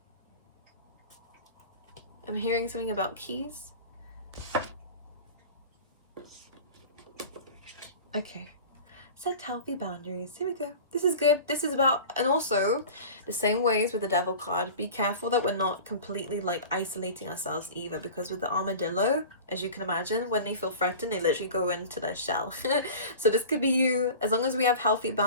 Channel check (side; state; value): both; inverted; correlation -0.37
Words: I'm hearing something about keys. Okay. Set healthy boundaries. Here we go. This is good. This is about, and also the same ways with the devil card, be careful that we're not completely like isolating ourselves either, because with the armadillo, as you can imagine, when they feel threatened, they literally go into their shell. So this could be you. As long as we have healthy